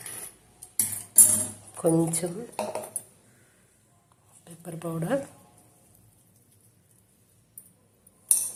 కొంచెం పెప్పర్ పౌడర్,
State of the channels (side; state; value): both; identical; correlation 1.00